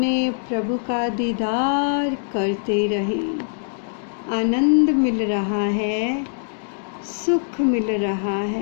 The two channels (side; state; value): right; silent; digital silence